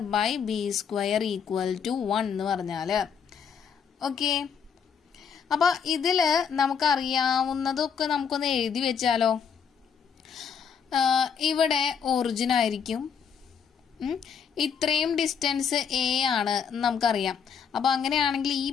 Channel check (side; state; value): right; quieter; 7.1 dB